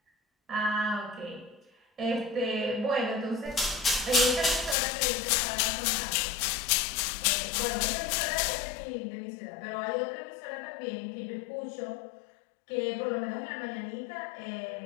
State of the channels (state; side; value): drops out; right; at 4.8 s